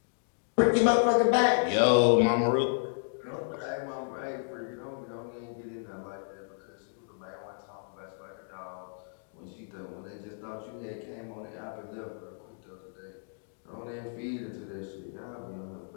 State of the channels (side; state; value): right; silent; digital silence